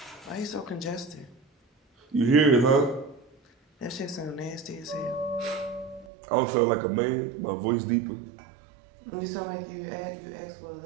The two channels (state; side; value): drops out; left; at 6.1 s